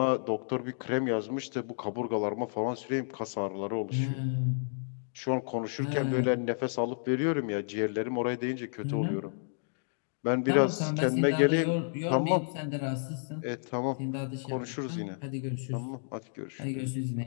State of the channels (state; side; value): silent; right; digital silence